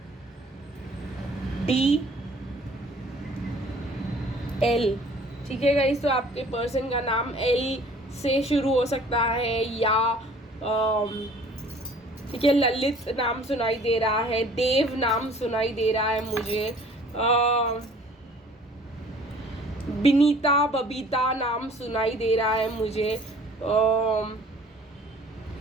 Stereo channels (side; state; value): both; normal; correlation 0.52